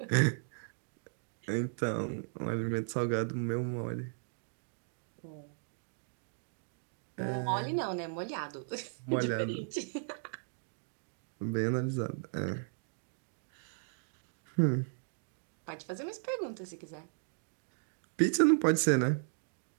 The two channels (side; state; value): left; silent; digital silence